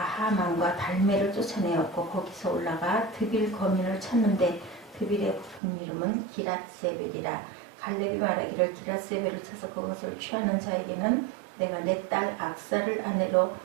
달메를 쫓아내었고 거기서 올라가 드빌 거민을 쳤는데 드빌의 본 이름은 기랏세벨이라. 갈렙이 말하기를 기랏세벨을 쳐서 그것을 취하는 자에게는 내가 내 딸 악사를 아내로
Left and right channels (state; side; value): drops out; left; at 5.6 s